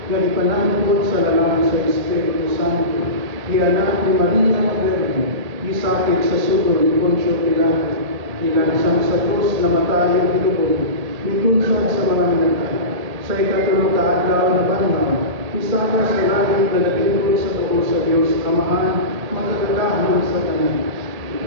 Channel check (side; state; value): left; late; 1.8 ms